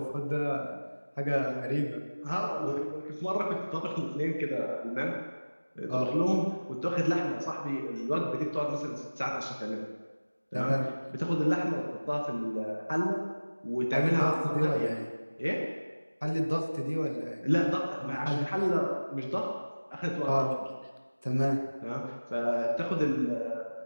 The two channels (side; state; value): both; inverted; correlation -1.00